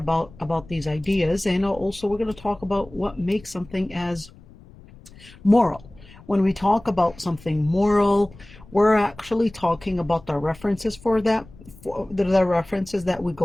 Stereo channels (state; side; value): noise; left; rumble, 22 dB below the sound